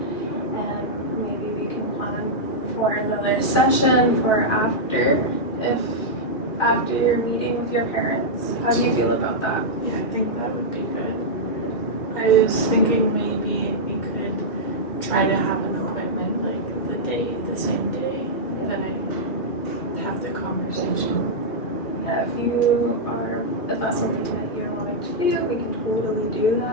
and maybe we can plan for another session for after your meeting with your parents. How do you feel about that? Yeah, I think that would be good. I was thinking maybe we could try to have an appointment like the same day that I have the conversation. Yeah, if that's something that you're wanting to do, we can totally do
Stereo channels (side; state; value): right; late; 2.4 ms